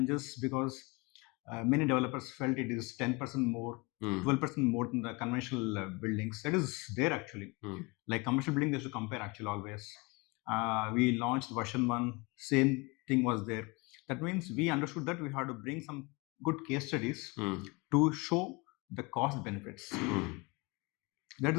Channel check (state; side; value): quieter; right; 26.7 dB